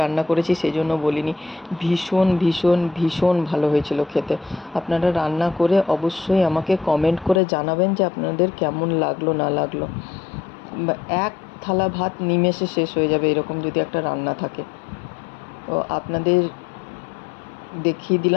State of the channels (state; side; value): drops out; right; at 7.4 s